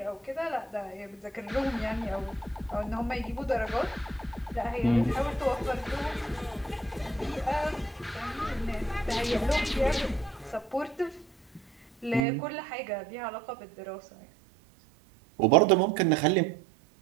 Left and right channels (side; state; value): left; drops out; at 12.2 s